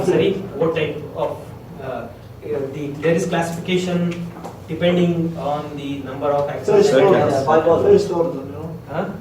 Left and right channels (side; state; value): both; identical; correlation 1.00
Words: what type of, there is classification depending on the number of axons. First order. Bipolar. First order, you know. Huh?